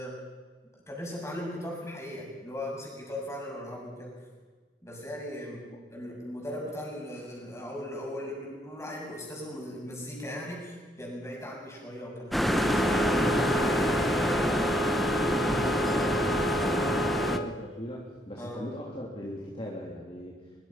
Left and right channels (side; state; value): both; normal; correlation 0.71